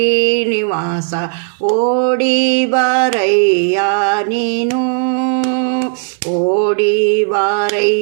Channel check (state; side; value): silent; left; 66 dB below the other